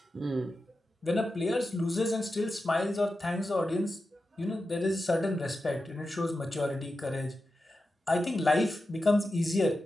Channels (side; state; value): both; normal; correlation 0.91